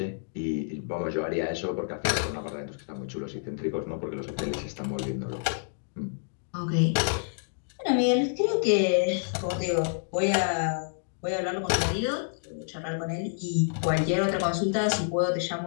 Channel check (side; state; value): right; silent; digital silence